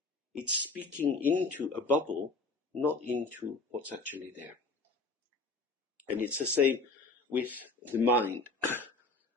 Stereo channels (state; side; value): quieter; right; 3.5 dB